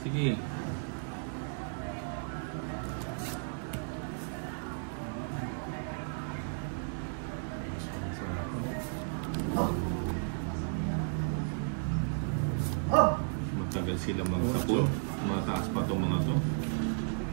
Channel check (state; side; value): silent; left; digital silence